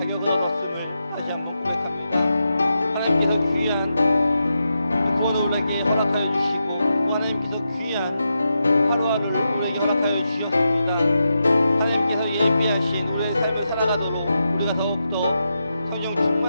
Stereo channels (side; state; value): both; inverted; correlation -0.87